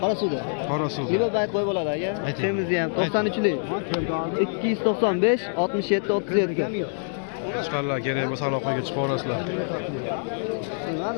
Qorasuvda. Qorasuv. Yilo bayt qo'y bo'ladi aka. Ayting. Semizni ham 93lik. 295 67 37. Qo'chqorlar kerak bo'lsa aloqaga chiqib olasizlar. Nima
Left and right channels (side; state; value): right; silent; digital silence